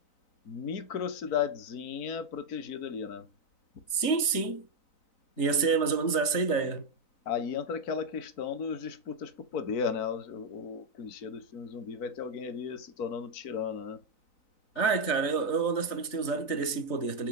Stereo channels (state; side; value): late; right; 3.9 ms